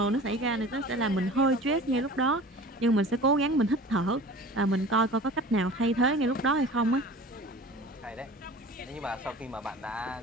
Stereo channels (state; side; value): normal; both; correlation 0.40